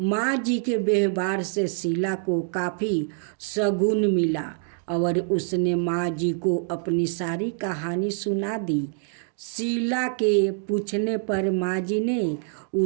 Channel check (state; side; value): silent; left; 60 dB below the other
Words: जी के व्यवहार से शीला को काफ़ी शगुन मिला और उसने माँ जी को अपनी सारी कहानी सुना दी। शीला के पूछने पर माँ जी ने